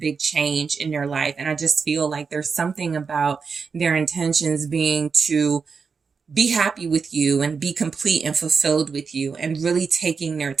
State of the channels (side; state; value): left; quieter; 5.4 dB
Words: change in their life. And I just feel like there's something about their intentions being to be happy with you and be complete and fulfilled with you, and really taking their